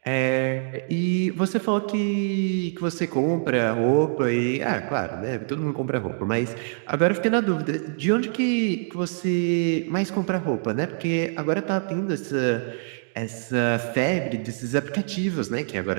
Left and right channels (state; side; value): silent; left; digital silence